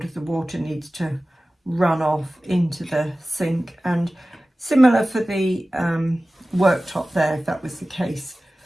the water needs to run off into the sink, and similar for the worktop there if that was the case.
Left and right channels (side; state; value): both; normal; correlation 0.97